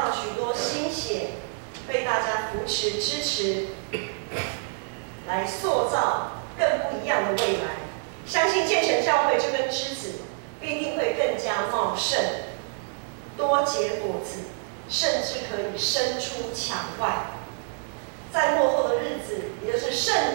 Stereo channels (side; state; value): left; silent; digital silence